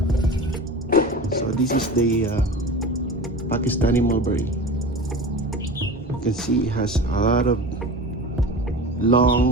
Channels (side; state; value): both; normal; correlation 0.32